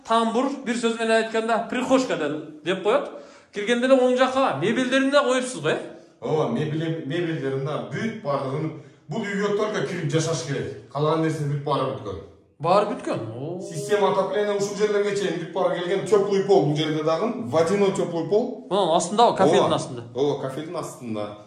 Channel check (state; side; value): identical; both; correlation 1.00